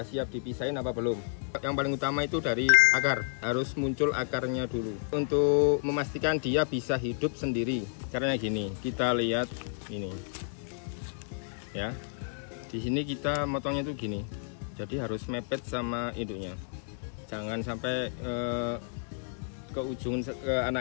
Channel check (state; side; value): silent; right; digital silence